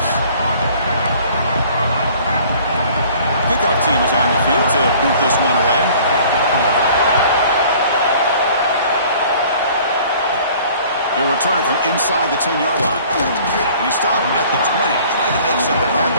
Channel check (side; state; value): both; inverted; correlation -0.52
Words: Kickoff team is on the field to boot this one away. He'll return it from inside the 10-yard line. And he stopped at the 20, trying to make something